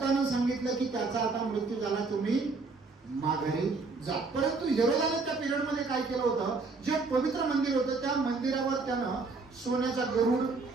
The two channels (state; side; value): quieter; left; 4.0 dB